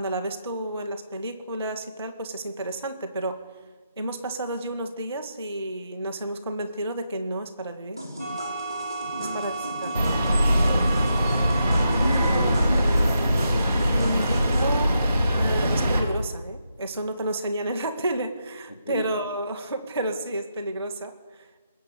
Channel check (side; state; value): both; inverted; correlation -0.82